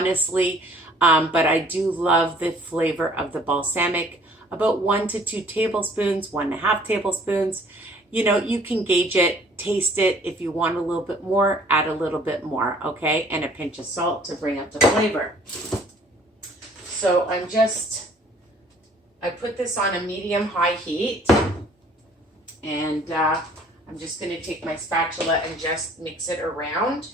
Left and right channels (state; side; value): normal; both; correlation 0.56